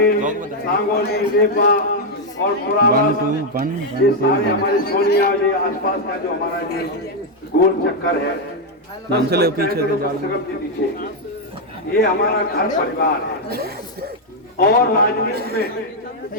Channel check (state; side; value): normal; both; correlation 0.01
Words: सांगोली, नेपा और पुरावास, ये सारे हमारे सोनिया, ये आसपास का जो हमारा ये गोल चक्कर है, चले पीछे पीछे, ये हमारा घर परिवार है। और राजनीति में